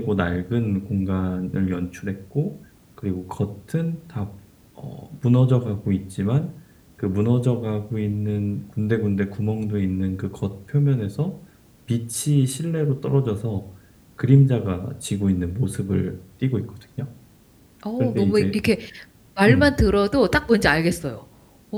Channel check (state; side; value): identical; both; correlation 1.00